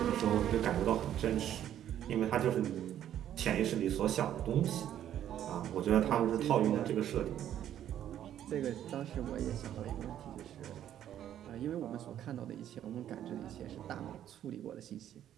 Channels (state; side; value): quieter; left; 10.9 dB